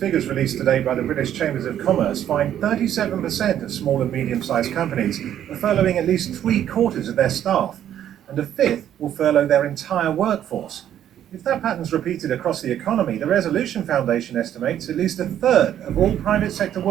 released today by the British Chambers of Commerce find 37% of small and medium-sized companies are furloughing at least 3/4 of their staff, and a fifth will furlough their entire workforce. If that pattern's repeated across the economy, the Resolution Foundation estimates at least a third of all private sector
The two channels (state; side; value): quieter; left; 10.7 dB